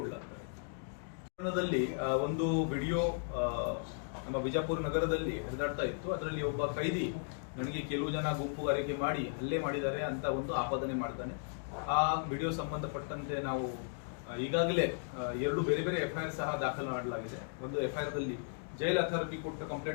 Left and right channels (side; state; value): right; silent; digital silence